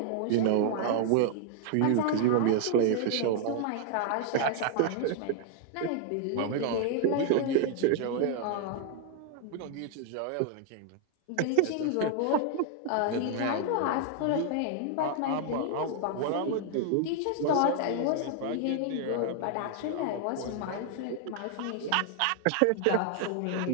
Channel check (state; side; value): different; both; correlation 0.00